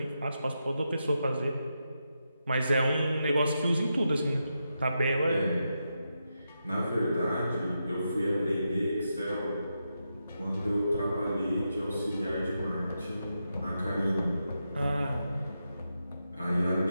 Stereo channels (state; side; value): inverted; both; correlation -0.86